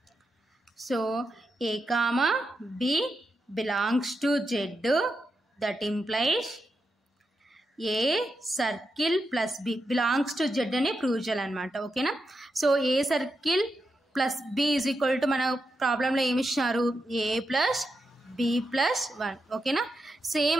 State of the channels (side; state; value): both; normal; correlation 0.86